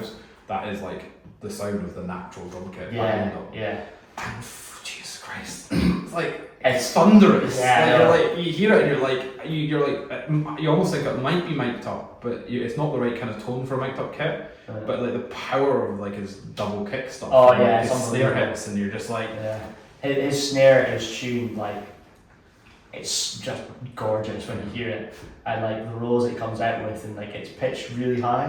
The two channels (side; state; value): both; identical; correlation 1.00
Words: That is like the sound of the natural drum kit behind them. yeah. And Jesus Christ, it's like it's thunderous. Yeah, Like, you're like you hear it and you're like you almost think it might be mic'd up, but it's not the right kind of tone for a mic'd up kit. But like the power of like his double kick stuff. Oh, and, yeah, like, his it's snare unbelievable. hits, and you're just like Yeah, his snare is tuned like it's just gorgeous when you hear it, and like the rolls it comes out with, and like it's pitched really